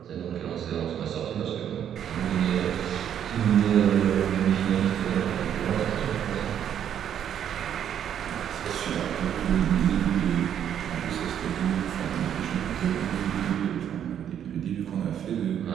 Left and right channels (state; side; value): quieter; left; 9.5 dB